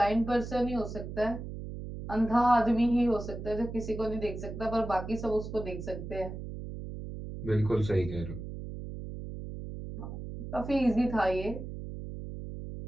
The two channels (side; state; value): right; noise; hum, 8 dB below the sound